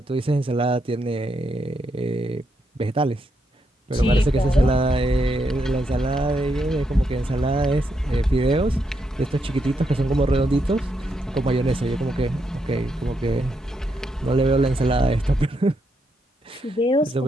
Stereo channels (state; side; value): normal; both; correlation 0.80